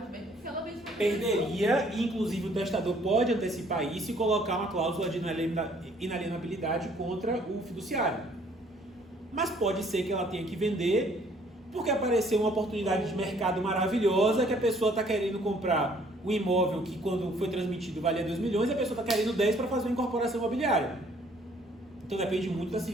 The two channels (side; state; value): both; normal; correlation 0.61